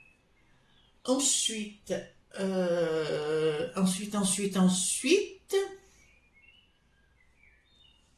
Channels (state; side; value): identical; both; correlation 1.00